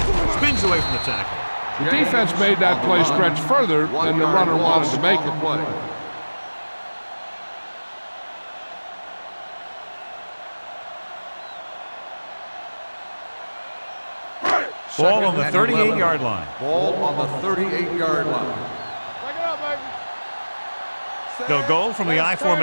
Spins away from the tackle. The defense made that play stretch further than the runner wanted to make it. Ball on the 38-yard line. Ball on the 38-yard line. Back it up, baby. They'll go from the I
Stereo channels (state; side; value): inverted; both; correlation -1.00